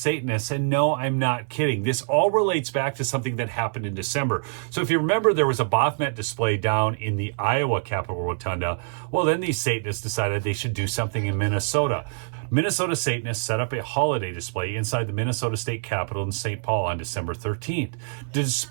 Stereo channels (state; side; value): silent; left; 57 dB below the other